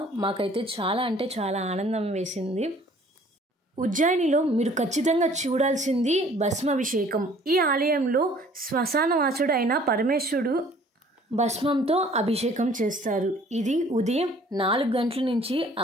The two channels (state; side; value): normal; both; correlation 0.55